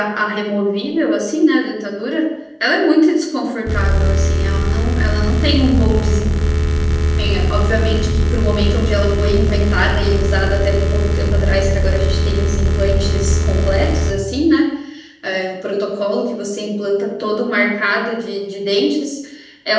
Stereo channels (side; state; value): both; identical; correlation 1.00